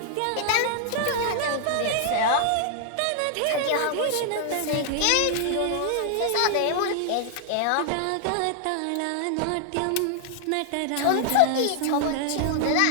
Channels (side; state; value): both; different; correlation -0.01